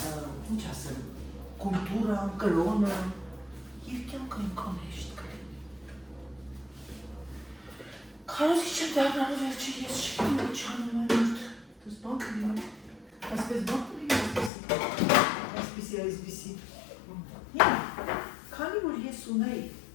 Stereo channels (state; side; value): drops out; right; at 14.5 s